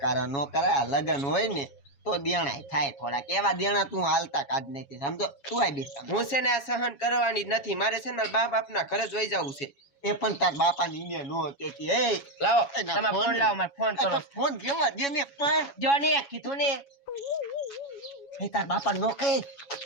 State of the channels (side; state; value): right; late; 7.3 ms